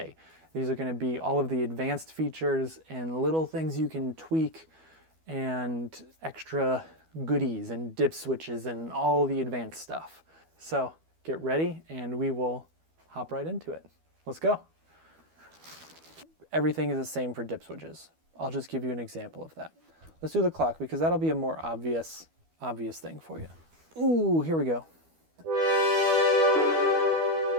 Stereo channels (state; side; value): late; left; 12 ms